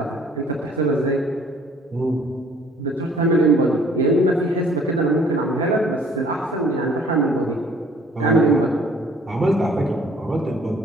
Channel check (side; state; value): both; normal; correlation 0.57